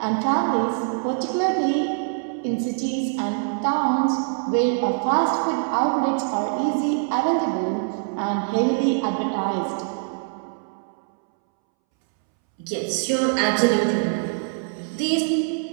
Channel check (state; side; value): silent; left; 63 dB below the other